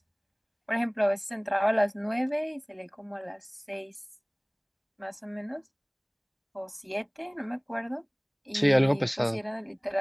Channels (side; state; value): both; identical; correlation 1.00